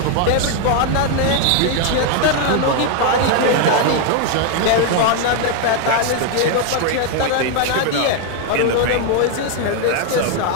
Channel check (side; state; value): both; different; correlation 0.01